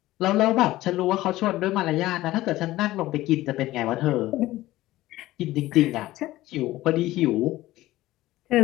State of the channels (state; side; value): quieter; right; 16.6 dB